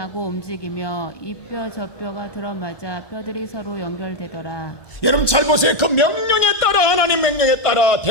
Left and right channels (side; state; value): right; late; 1.2 ms